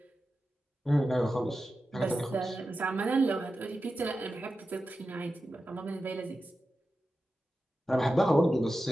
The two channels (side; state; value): both; normal; correlation 0.92